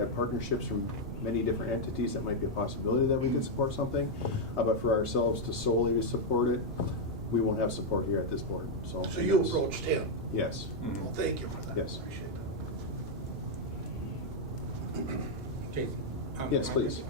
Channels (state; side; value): normal; both; correlation -0.01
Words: partnerships from many different entities, that might be a possibility that we could support something. But for ourselves to solely support it, we won't have support here at this board. So you approached him? Yes. Well, thank you for that. Yes. Appreciate Jason? Yes, please.